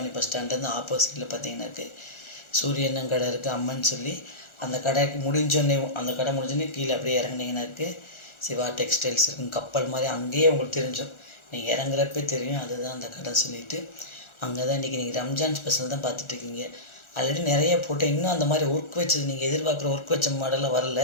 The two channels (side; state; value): right; late; 1.4 ms